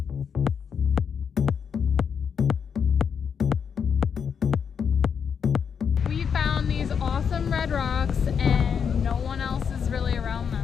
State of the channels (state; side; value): quieter; right; 6.9 dB